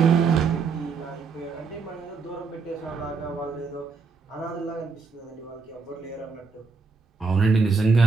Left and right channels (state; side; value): quieter; left; 4.8 dB